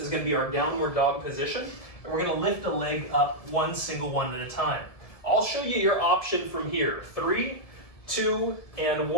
going to be our downward dog position, and we're going to lift a leg up one single one at a time. I'll show you your option from here. 3, 2, and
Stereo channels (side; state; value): right; late; 1.7 ms